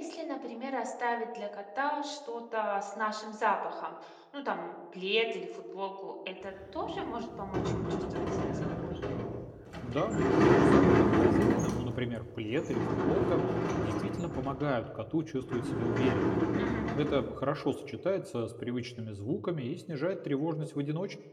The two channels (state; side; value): identical; both; correlation 1.00